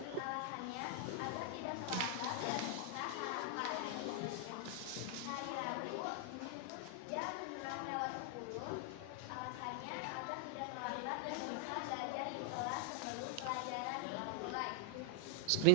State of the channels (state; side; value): different; both; correlation 0.00